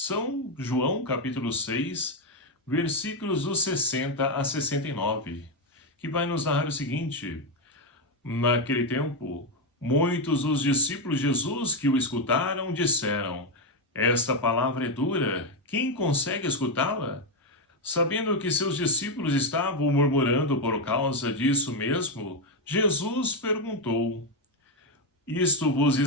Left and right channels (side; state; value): both; normal; correlation 0.06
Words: João, capítulo 6, versículos dos 60 a 69. Que vai nos narrar o seguinte: naquele tempo, muitos dos discípulos de Jesus que o escutaram disseram: esta palavra é dura, quem consegue escutá-la? Sabendo que seus discípulos estavam murmurando por causa disso mesmo, Jesus perguntou: isto vos